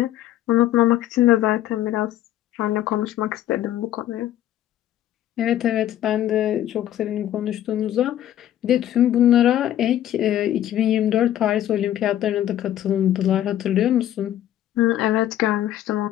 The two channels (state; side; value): quieter; right; 12.2 dB